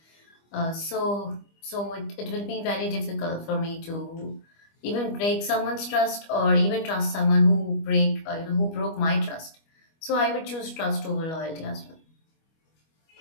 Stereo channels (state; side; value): late; right; 25 ms